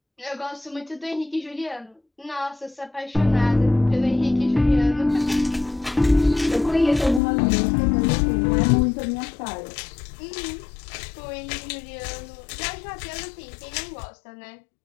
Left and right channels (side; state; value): right; drops out; at 7.2 s